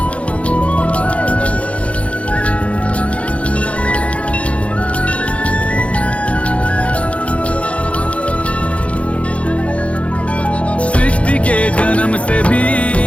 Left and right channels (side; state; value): right; late; 0.063 ms